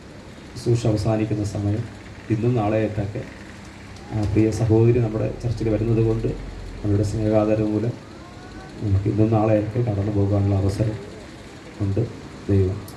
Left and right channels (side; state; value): both; identical; correlation 1.00